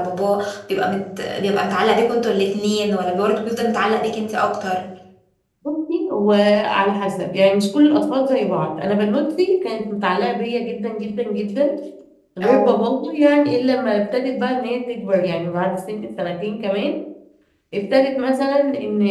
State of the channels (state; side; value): identical; both; correlation 1.00